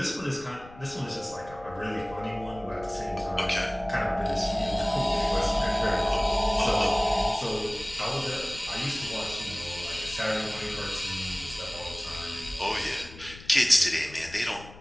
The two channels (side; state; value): left; noise; rumble, 18 dB below the sound